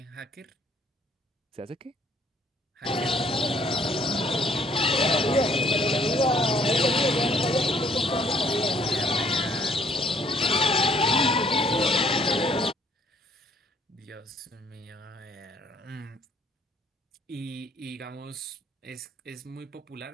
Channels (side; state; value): both; normal; correlation 0.62